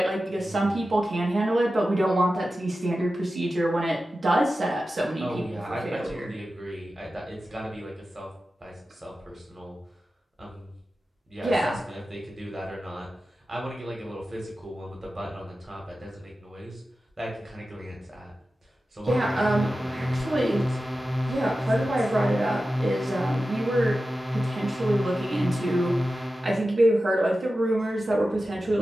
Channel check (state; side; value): normal; both; correlation 0.93